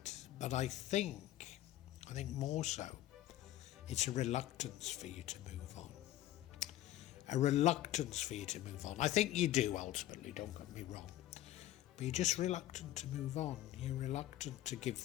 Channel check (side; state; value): right; quieter; 14.0 dB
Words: but I think more so, it's a reluctance for you to move on. A reluctance for you to move on. I think you do ultimately, don't get me wrong, but you're just reluctant to move on. You're reluctant to give